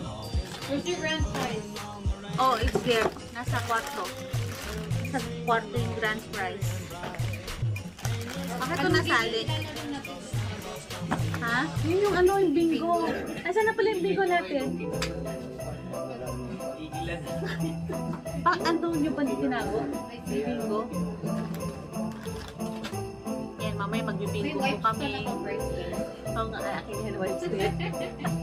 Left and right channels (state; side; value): identical; both; correlation 1.00